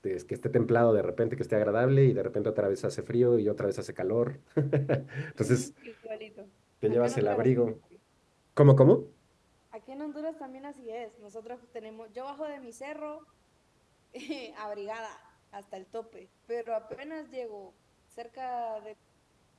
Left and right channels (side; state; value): both; identical; correlation 1.00